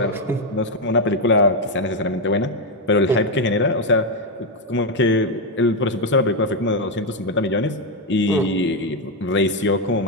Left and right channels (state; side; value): normal; both; correlation 0.04